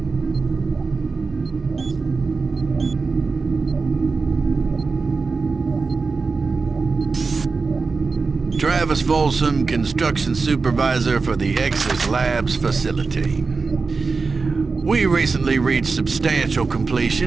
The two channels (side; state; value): left; quieter; 4.4 dB